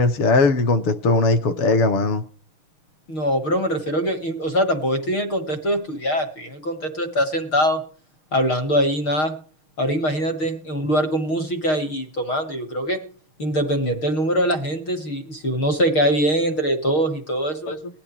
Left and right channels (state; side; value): late; right; 6.5 ms